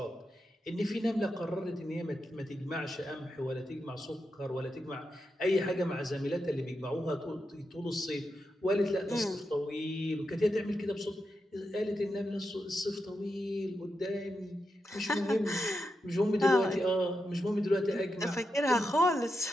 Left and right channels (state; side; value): normal; both; correlation 0.87